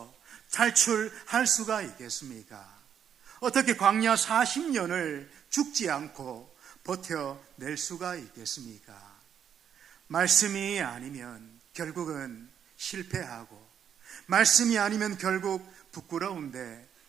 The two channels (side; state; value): left; quieter; 8.5 dB